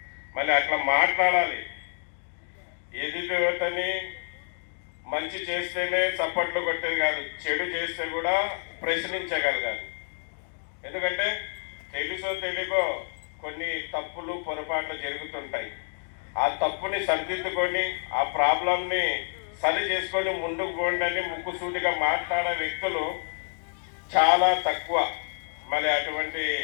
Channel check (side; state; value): right; silent; 59 dB below the other